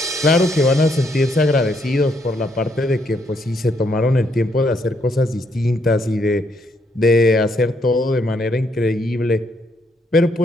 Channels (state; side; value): normal; both; correlation 0.73